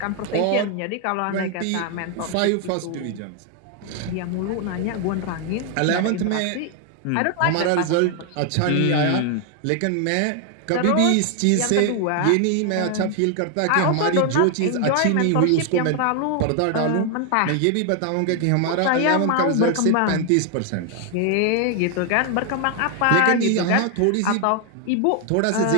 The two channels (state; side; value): different; both; correlation 0.00